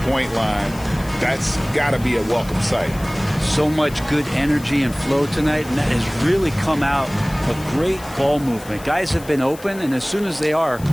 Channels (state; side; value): noise; left; hiss, 19 dB below the sound